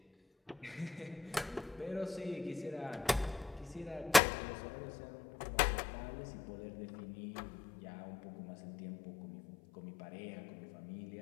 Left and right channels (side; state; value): right; drops out; at 4.2 s